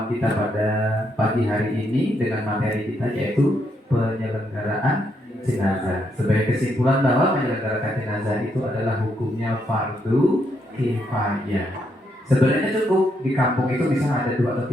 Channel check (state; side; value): normal; both; correlation 0.77